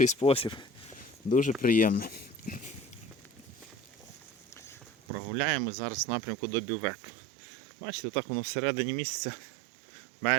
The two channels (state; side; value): drops out; left; at 4.9 s